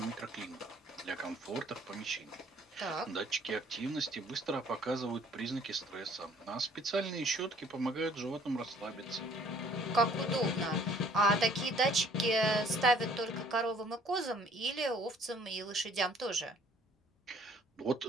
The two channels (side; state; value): both; normal; correlation 0.57